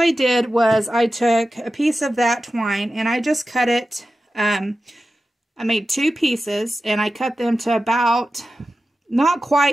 did was I took a piece of that twine and I just cut it. I made 2 pieces and I cut them to about not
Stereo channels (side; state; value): both; normal; correlation 0.93